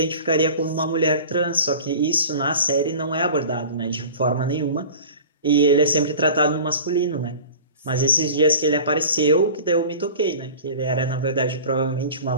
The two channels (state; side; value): inverted; both; correlation -0.39